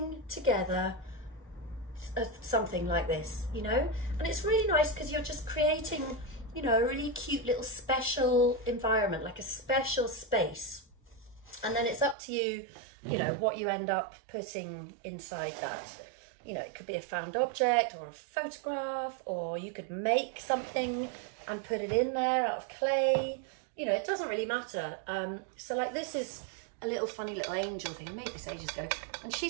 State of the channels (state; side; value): drops out; left; at 12.2 s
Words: together something like this, you know. And it's really nice because you're just creating, you know, a really cute little special environment, like a special space, and then it's up to you, you know, what you end up putting inside that. You know, it could be a found object or a photograph, or you could make something and put it in there out of clay. You know, it doesn't really matter. So like this is a little funny little angel thing. I made this ages ago, and